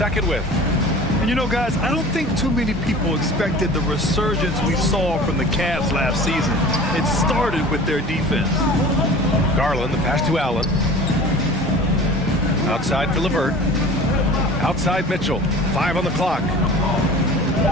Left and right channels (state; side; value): normal; both; correlation 0.41